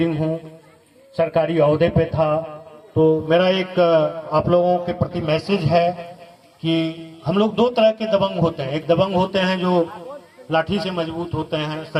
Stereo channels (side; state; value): both; identical; correlation 1.00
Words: हूँ, सरकारी ओहदे पे था। तो मेरा एक आप लोगों के प्रति मैसेज है कि हम लोग दो तरह के दबंग होते हैं। एक दबंग होते हैं जो लाठी से मजबूत होते हैं,